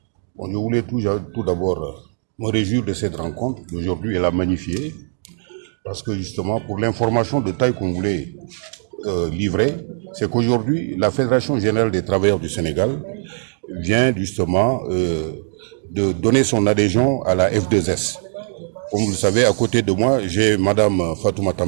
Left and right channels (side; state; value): left; silent; digital silence